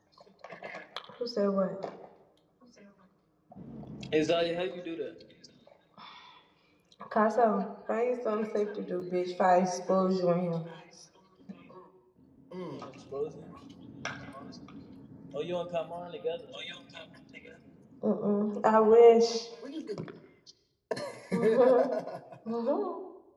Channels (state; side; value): identical; both; correlation 1.00